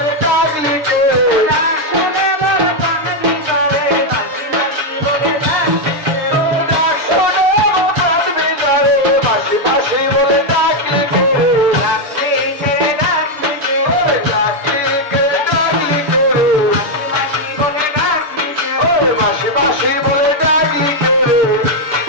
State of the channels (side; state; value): left; late; 7.0 ms